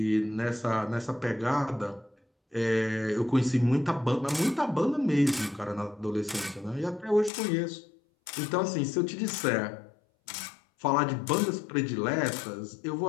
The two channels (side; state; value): right; drops out; at 7.3 s